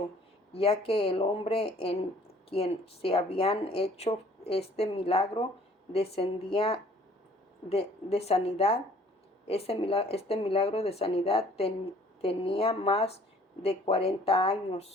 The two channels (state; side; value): normal; both; correlation 0.56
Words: ya que el hombre en quien se habían hecho este milagro descendía de sanidad. Este milagro de sanidad tenía más de 40